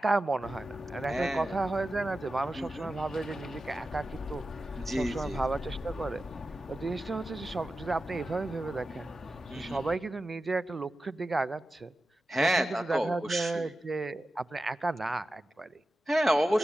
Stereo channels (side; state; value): both; normal; correlation 0.93